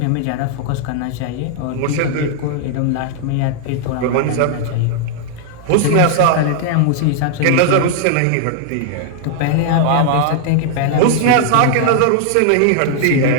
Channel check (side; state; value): both; different; correlation 0.00